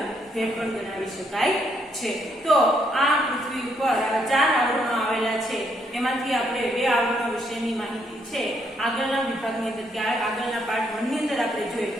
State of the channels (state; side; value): normal; both; correlation 0.73